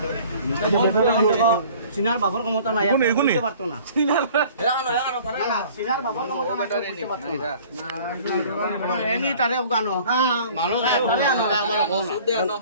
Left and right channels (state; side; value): inverted; both; correlation -0.50